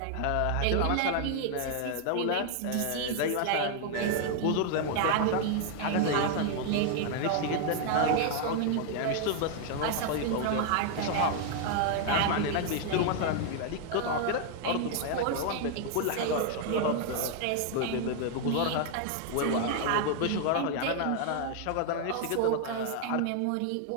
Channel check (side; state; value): both; different; correlation 0.00